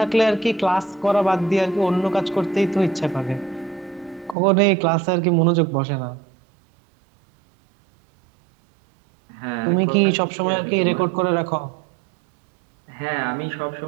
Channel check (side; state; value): left; drops out; at 4.4 s